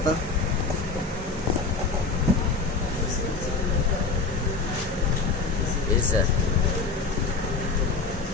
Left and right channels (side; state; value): right; quieter; 4.2 dB